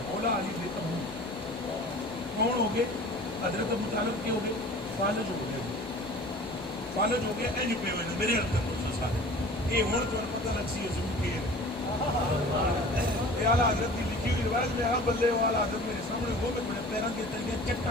مولا علی بے تبو کون ہو گئے حضرت ابو طالب کے ہو گئے فالج ہو گئے فالج ہو گئے اینج پہ ہوئے میرے حضرت دوسرے ساتھ یہ ہون تو پتہ لگ سی حضور کے اعلیٰ حضرت کی لکھی ہوئی روایت میں آپ بلے ہو اعلیٰ حضرت میرے سامنے ہو گئے میرے پیران کے تلگے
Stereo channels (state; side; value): normal; both; correlation 0.43